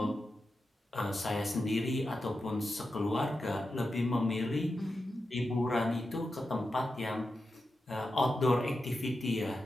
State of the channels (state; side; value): normal; both; correlation 0.90